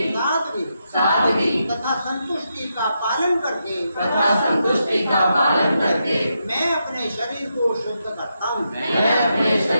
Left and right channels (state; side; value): inverted; both; correlation -0.84